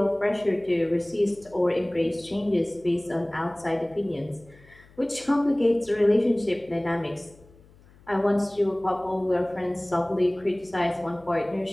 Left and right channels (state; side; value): noise; left; hum, 26 dB below the sound